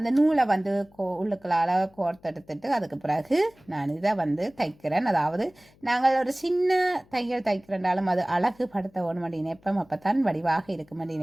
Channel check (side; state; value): left; noise; hum, 29 dB below the sound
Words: நூலை வந்து உள்ளுக்களால் கோர்த்தெடுத்துட்டு அதுக்கு பிறகு நான் இதை வந்து தைக்கிறேன். அதாவது நாங்கள் ஒரு சின்ன தையல் தைக்கிறனாலும் அது அழகு படுத்த வேணும் அப்படி நினைப்போம், அப்போ தான் வடிவாக இருக்கும் அப்படி